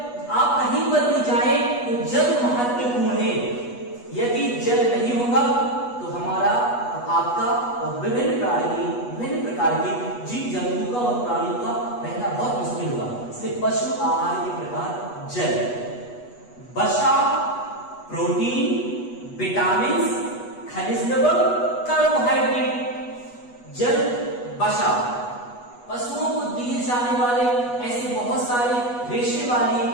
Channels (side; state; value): right; late; 8.2 ms